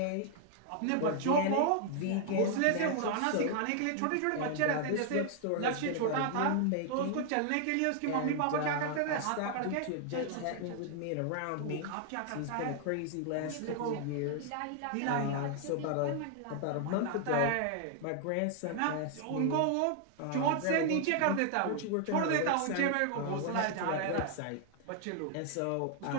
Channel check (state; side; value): different; both; correlation 0.00